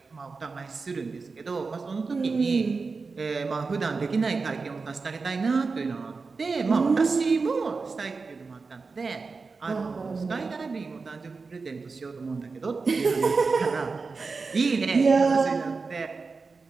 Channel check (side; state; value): left; quieter; 4.4 dB